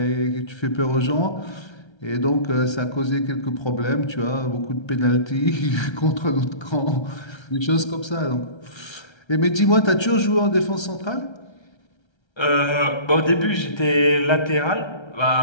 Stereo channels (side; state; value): right; late; 1.3 ms